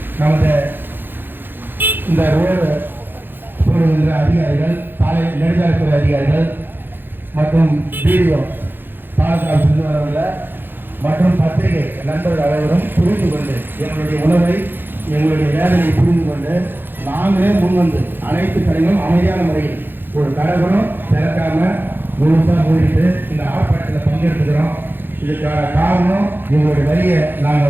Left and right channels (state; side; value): late; left; 0.097 ms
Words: நமது இந்த ரோடு போடுகின்ற அதிகாரிகள், சாலை நெடுஞ்சாலைத்துறை அதிகாரிகள் மற்றும் வீடியோ பாலக்காடு சென்று வரவுள்ள மற்றும் பத்திரிகை நண்பர்கள் அனைவரும் புரிந்து கொண்டு எங்களுடைய உணவை, எங்களுடைய வேதனையை புரிந்து கொண்டு நாங்களே முன்வந்து அனைத்து கடைகளும் அமைதியான முறையில் ஒரு கடைகளும் திறக்காம முழுசாக மூடிட்டு இந்த ஆர்ப்பாட்டத்தில் பங்கெடுத்துக்கிறோம். இதுக்கான காரணம் எங்களுடைய வரியை